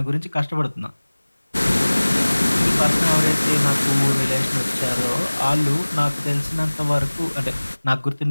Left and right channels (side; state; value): both; inverted; correlation -1.00